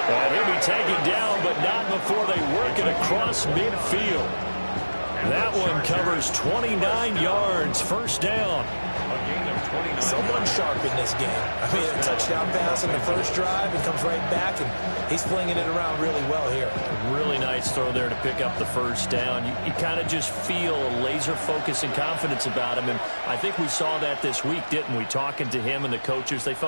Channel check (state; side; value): inverted; both; correlation -1.00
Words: And he'll be taken down, but not before they work it across midfield. That one covers 29 yards, first down. Someone sharp in this game. I mean, a touchdown pass in the first drive and comes right back, and he's flinging it around really well here. Really nice throw there to pick up the first down. You kind of just feel a laser focus and confidence about him, and I think we saw that this week, didn't we? Talking to him and the coaches, they